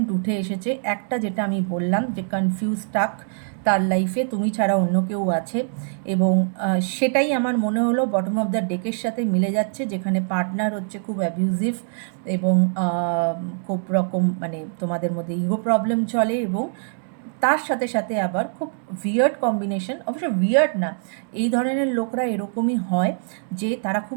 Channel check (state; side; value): silent; left; digital silence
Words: উঠে এসেছে। একটা যেটা আমি বললাম যে কনফিউজ টাক, তার লাইফে তুমি ছাড়া অন্য কেউ আছে, এবং সেটাই আমার মনে হলো বটম অফ দ্য ডেকের সাথে মিলে যাচ্ছে, যেখানে পার্টনার হচ্ছে খুব অ্যাবিউজিভ, এবং খুব রকম মানে তোমাদের মধ্যে ইগো প্রবলেম চলে, এবং তার সাথে সাথে আবার খুব উইয়ার্ড কম্বিনেশন। অবশ্য উইয়ার্ড না, এই ধরনের লোকরা এরকমই হয় যে তারা